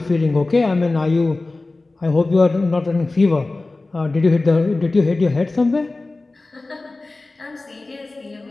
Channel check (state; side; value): quieter; right; 3.2 dB